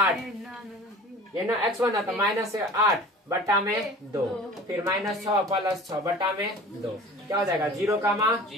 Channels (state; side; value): normal; both; correlation 0.41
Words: ये ना x1 तो -8 बटा में 2, फिर -6 प्लस 6 बटा में 2, क्या हो जाएगा? 0,